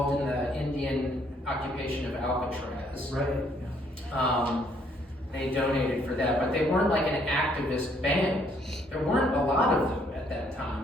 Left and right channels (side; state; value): both; normal; correlation 0.67